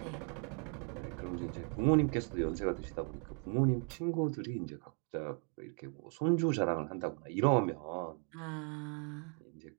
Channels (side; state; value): left; quieter; 39.7 dB